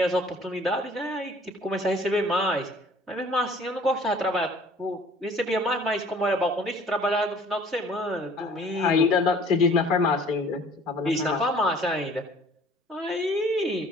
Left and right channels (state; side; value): normal; both; correlation 0.52